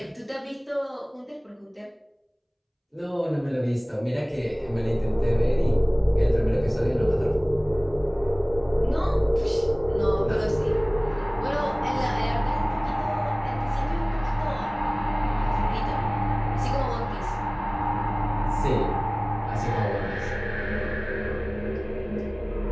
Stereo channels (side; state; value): both; identical; correlation 1.00